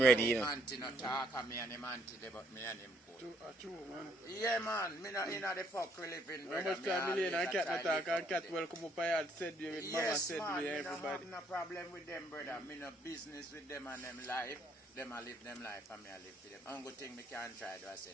ready, you know. Auntie no talk and me and him auntie there, but me and him cool. True, man. Yeah man, me not in the fuck we live in, How brother. much time million and cat not talk and cat will come up and said you with mama Yes, said man, with me no everybody. have no problem with them, brother. Me no business with them and them life. Them a live them life and me a live for them. Only thing me can try do I said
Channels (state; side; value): normal; both; correlation 0.68